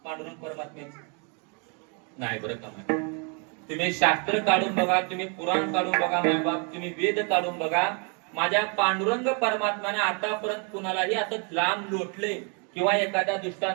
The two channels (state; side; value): quieter; left; 36.5 dB